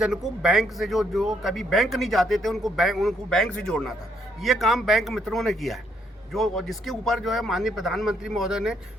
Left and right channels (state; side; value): normal; both; correlation 0.72